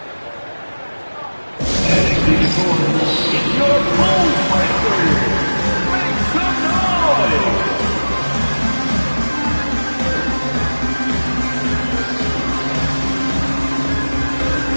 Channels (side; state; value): both; inverted; correlation -1.00